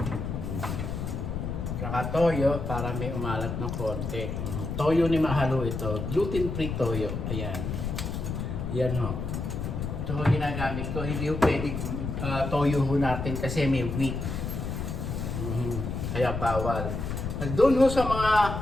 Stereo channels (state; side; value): noise; left; rumble, 4 dB below the sound